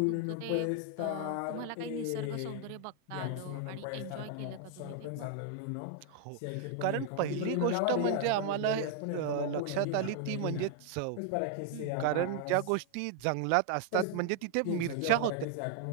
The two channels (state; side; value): different; both; correlation 0.00